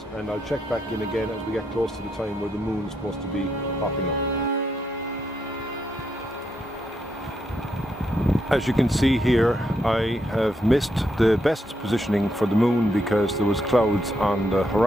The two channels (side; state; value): both; normal; correlation 0.79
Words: and I'll check back in again as we get close to the time where the moon is supposed to be popping up. As you can see here, I have missed the best positioning for the moon because there was clouds on the